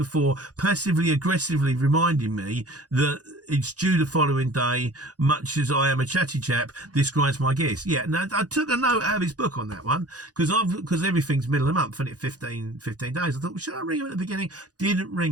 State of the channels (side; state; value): left; late; 0.68 ms